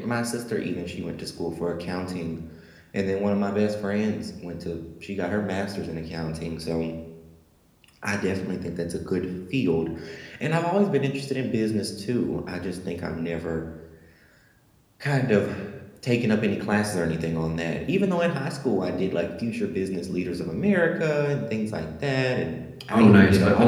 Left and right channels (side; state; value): both; identical; correlation 1.00